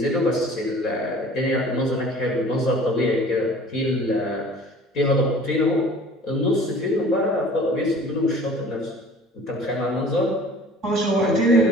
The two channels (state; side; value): normal; both; correlation 0.47